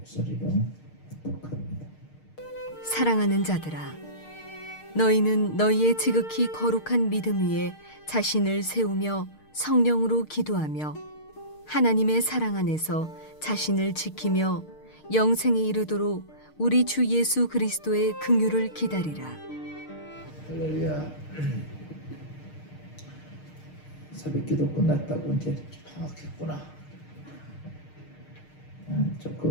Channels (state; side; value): late; right; 6.5 ms